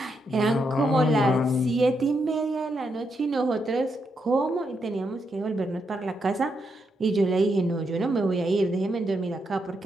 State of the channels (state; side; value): normal; both; correlation 0.81